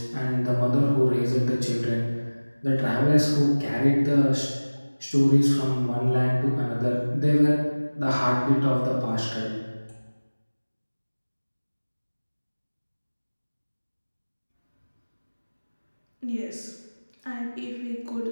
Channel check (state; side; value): inverted; both; correlation -1.00